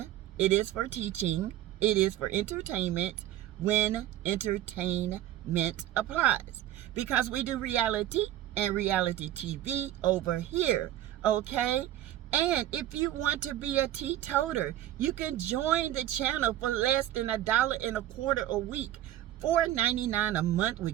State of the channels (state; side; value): quieter; left; 13.0 dB